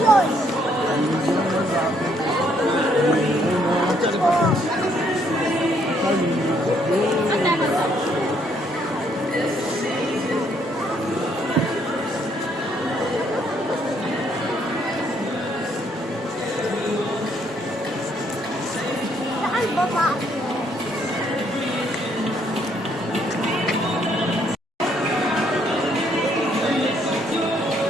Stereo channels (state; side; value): normal; both; correlation 0.69